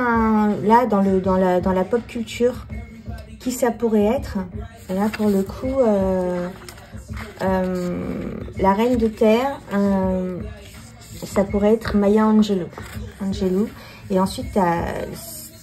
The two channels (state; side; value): identical; both; correlation 1.00